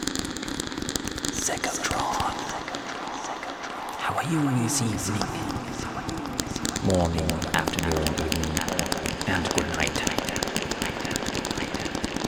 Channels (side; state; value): both; identical; correlation 1.00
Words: Secotron. How are you this evening? Morning, afternoon, evening, and good night.